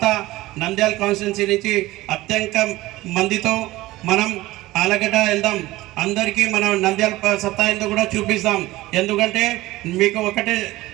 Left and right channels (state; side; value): quieter; left; 18.2 dB